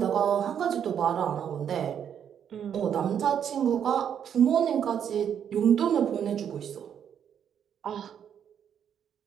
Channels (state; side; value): quieter; left; 8.6 dB